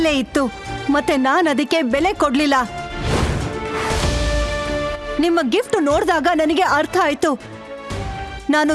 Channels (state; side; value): identical; both; correlation 1.00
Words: ಇತ್ತು, ಮತ್ತೆ ನಾನು ಅದಕ್ಕೆ ಬೆಲೆ ಕೊಡ್ಲಿಲ್ಲ. ನಿಮ್ಮ ಗಿಫ್ಟ್ ನೋಡಿದಾಗ ನನಗೆ ಅರ್ಥ ಆಯ್ತು ನಾನು